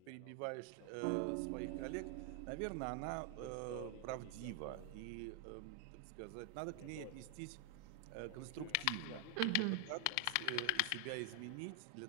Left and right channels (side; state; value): both; different; correlation 0.00